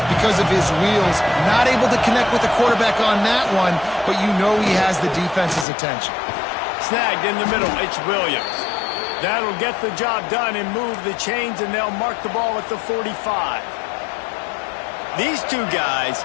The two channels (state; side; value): drops out; right; at 5.7 s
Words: because of his wheels. Not able to connect with the quarterback on that one, but you know he has the defense's attention. Snagged in the middle, it's Williams. That'll get the job done and move the chains, and they'll mark the ball at the 45. These two guys,